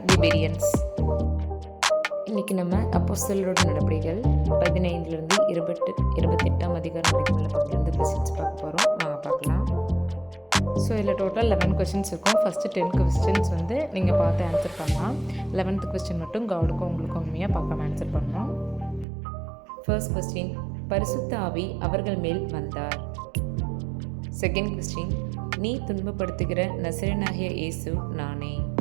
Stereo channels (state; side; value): drops out; left; at 19.1 s